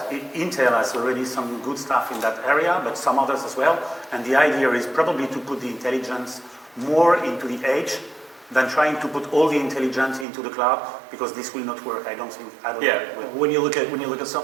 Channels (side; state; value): left; drops out; at 10.2 s